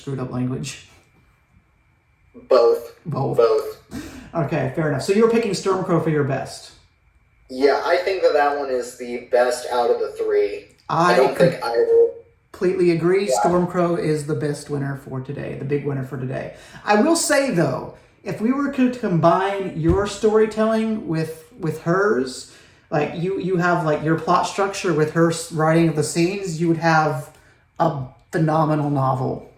language? Both. Okay, fair enough. So you're picking Stormcrow for your best. Yeah, I think that one is the best out of the 3. I don't think I will... Completely agree. Yeah. Stormcrow is the best winner for today, the big winner for today. I will say, though, if we were to combine your storytelling with hers, like you have like your plot structure with her writing of the scenes, you would have a phenomenal novel.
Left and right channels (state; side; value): identical; both; correlation 1.00